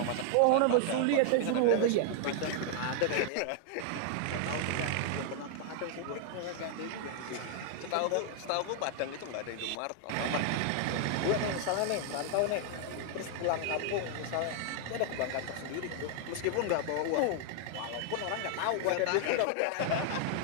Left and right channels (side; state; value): both; different; correlation 0.00